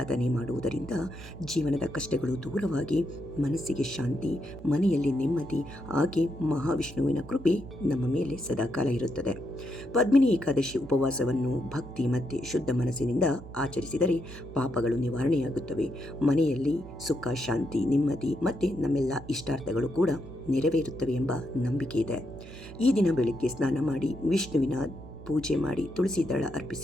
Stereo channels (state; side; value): noise; right; hum, 15 dB below the sound